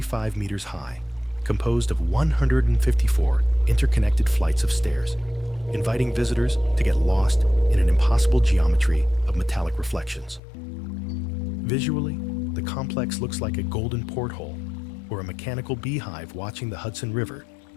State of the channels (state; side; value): drops out; right; at 10.4 s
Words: meters high, composed of 154 interconnected flights of stairs, inviting visitors to get lost in an impossible geometry of metallic reflections. Visually, the complex looks like a golden porthole or a mechanical beehive watching the Hudson River